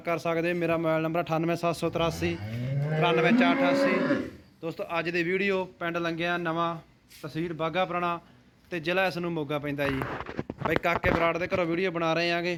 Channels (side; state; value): both; identical; correlation 1.00